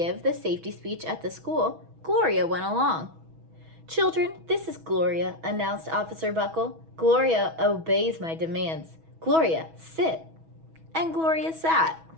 the safety speech at the school, Gloria went along. "Children, this is Gloria," announced Officer Buckle. "Gloria obeys my demands. Gloria, sit." And Gloria sat.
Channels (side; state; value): left; late; 6.2 ms